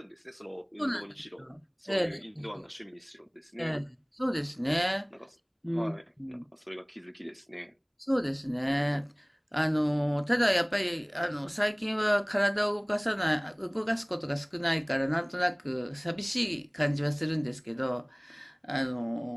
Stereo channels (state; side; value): identical; both; correlation 1.00